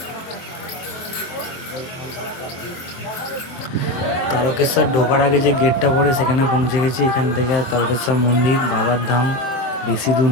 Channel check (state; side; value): late; right; 23 ms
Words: তারকেশ্বর ঢোকার আগে যে গেটটা পড়ে সেখানে পৌঁছে গেছি। এখান থেকে তারকেশ্বর মন্দির বাবার ধাম বেশি দূর